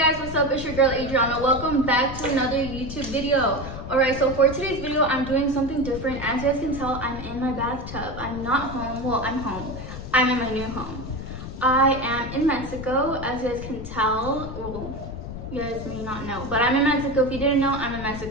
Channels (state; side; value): noise; left; rumble, 9 dB below the sound